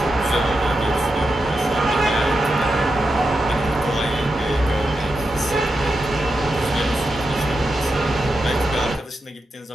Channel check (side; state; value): both; normal; correlation 0.88